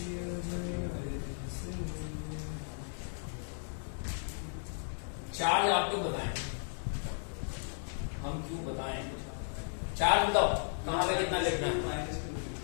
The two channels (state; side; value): silent; right; 54 dB below the other